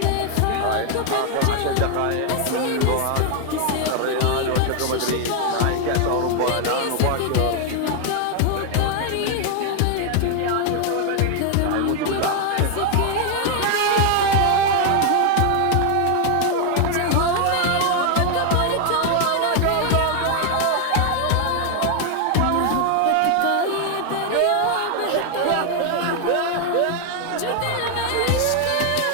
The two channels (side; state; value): both; different; correlation 0.00